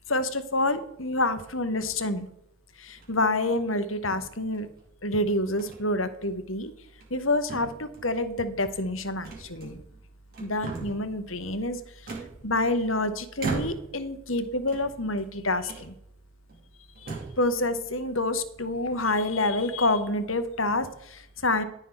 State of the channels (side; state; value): both; normal; correlation -0.13